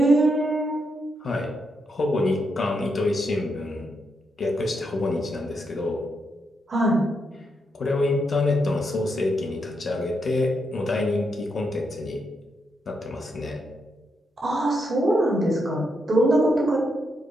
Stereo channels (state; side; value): normal; both; correlation 0.81